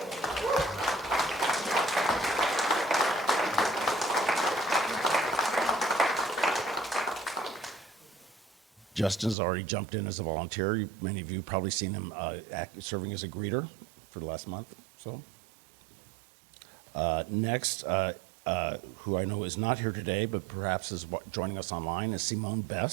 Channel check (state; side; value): drops out; left; at 9.3 s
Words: Justin's already jumped in as a volunteer. Many of you probably seen him serving as a greeter for the last month. So next, who I know is not here today, but perhaps is joining us online, is Simone